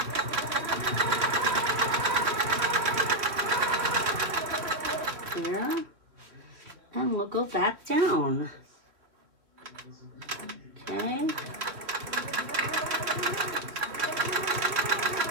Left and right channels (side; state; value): left; late; 3.1 ms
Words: Here. And we'll go back down. Okay.